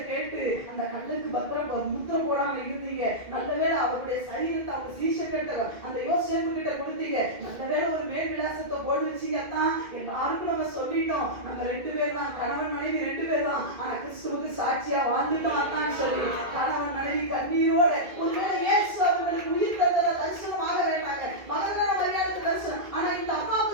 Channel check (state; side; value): late; left; 2.2 ms